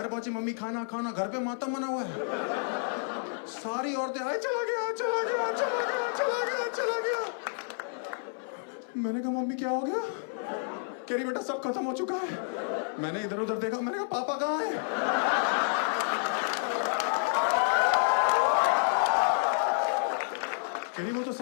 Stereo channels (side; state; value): right; silent; 58 dB below the other